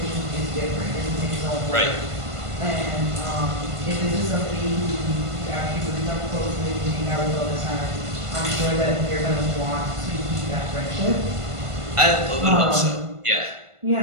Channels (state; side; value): late; left; 1.5 ms